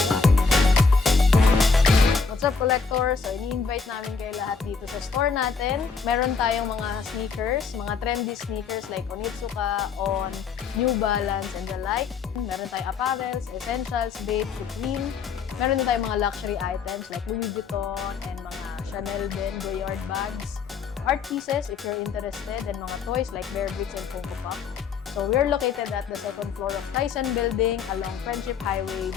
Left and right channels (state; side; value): quieter; right; 5.3 dB